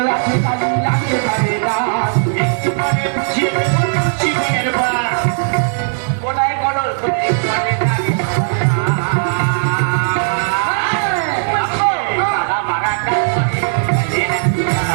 আছে কালি লাগতে পারে না একটু পরে বুঝিয়ে দেবো তুলসী বনের বাস। ওটাই করো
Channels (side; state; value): left; silent; digital silence